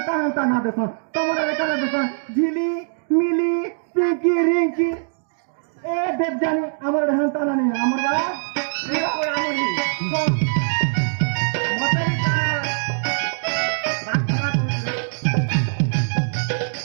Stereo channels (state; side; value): silent; left; digital silence